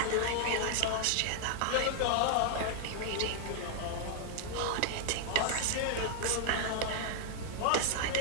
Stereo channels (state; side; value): different; both; correlation 0.00